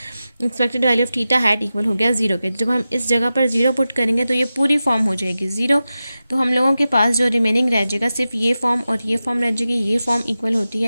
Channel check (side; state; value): both; inverted; correlation -0.93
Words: expected value of theta hat equal हो गया 0 के। जब हम इस जगह पर 0 पुट करेंगे तो ये पूरी फॉर्म हो जाएगी 0, तो हम लोगों के पास जो रिमेनिंग रह जाएगा सिर्फ ये फॉर्म और ये फॉर्म रह जाएगी। ये फॉर्म इक्वल होती